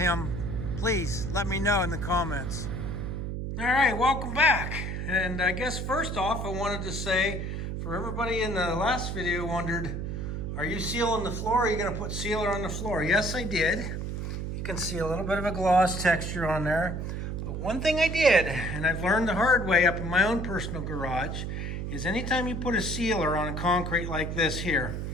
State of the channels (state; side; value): noise; right; hum, 4 dB below the sound